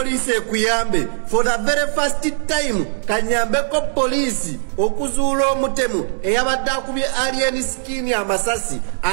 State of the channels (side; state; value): left; silent; digital silence